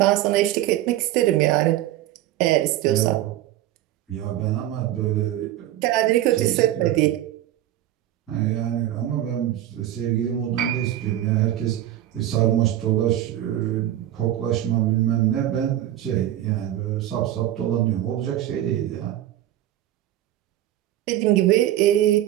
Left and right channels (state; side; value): quieter; left; 13.1 dB